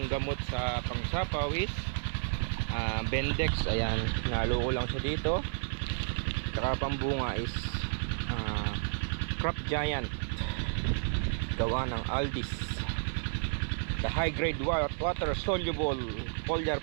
gamot sa pangsapaw is Bendex. Ayan, nalo ko lang siya dito. Saka pambunga is Crop Giant, gawa ng Aldis. The high grade water soluble foliar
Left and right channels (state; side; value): silent; left; digital silence